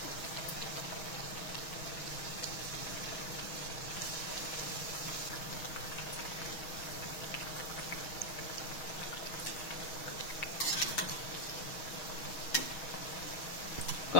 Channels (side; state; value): right; late; 6.3 ms